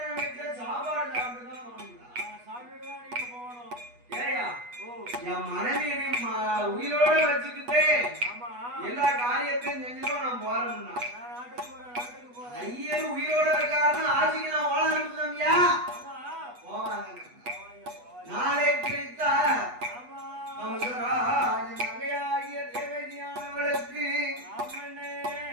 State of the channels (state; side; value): late; left; 8.2 ms